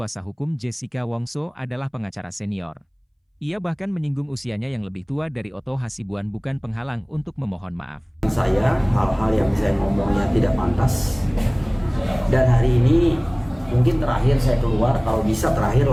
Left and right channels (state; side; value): identical; both; correlation 1.00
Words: hukum Jessica Wongso adalah pengacara senior. Ia bahkan menyinggung usianya yang lebih tua dari Otto Hasibuan bukan penghalang untuk memohon maaf. Saya, hal-hal yang saya ngomongnya tidak pantas. Dan hari ini mungkin terakhir saya keluar, kalau bisa terakhir